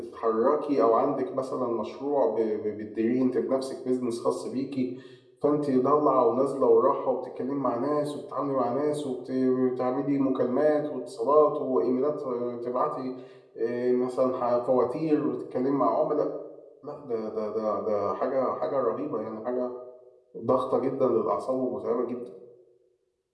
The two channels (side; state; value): both; identical; correlation 1.00